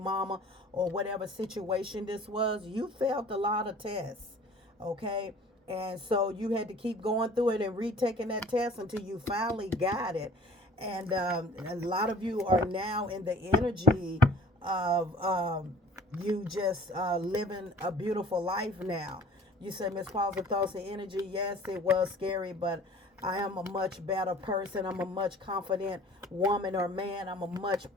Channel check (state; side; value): normal; both; correlation 0.48